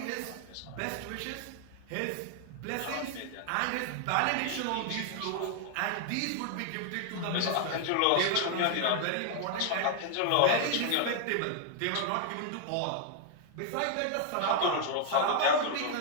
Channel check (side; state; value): both; different; correlation 0.00